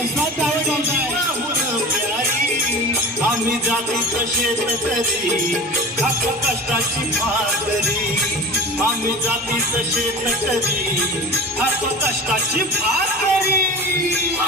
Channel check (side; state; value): both; normal; correlation 0.33